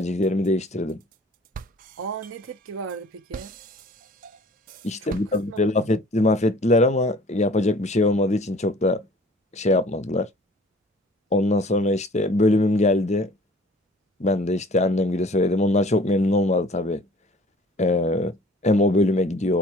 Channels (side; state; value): both; normal; correlation 0.51